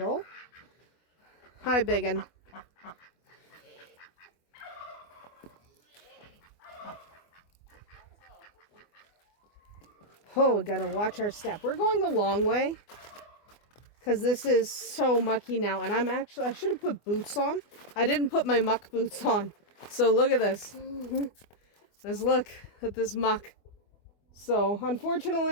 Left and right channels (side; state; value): right; late; 24 ms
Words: Hi, biggin. Oh, we gotta watch our step. We're going the long way because this is so mucky now. And I should have put boots on. I didn't put my muck boots on. So look at this. Let's look at this muck. So